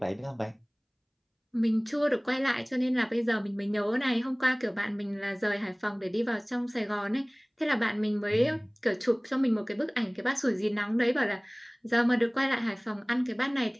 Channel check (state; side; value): identical; both; correlation 1.00